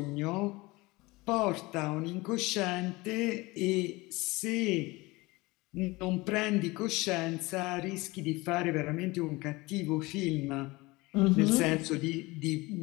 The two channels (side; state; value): right; quieter; 22.4 dB